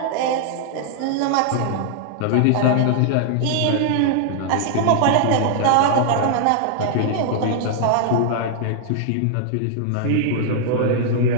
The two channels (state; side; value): different; both; correlation -0.01